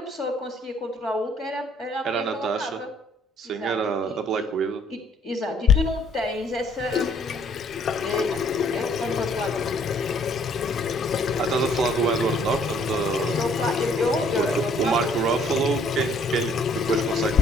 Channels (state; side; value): normal; both; correlation 0.62